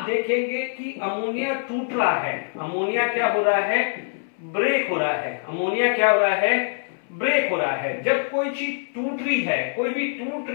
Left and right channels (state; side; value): silent; right; 63 dB below the other